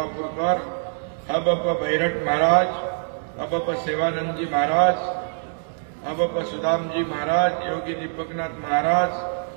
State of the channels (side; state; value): left; silent; digital silence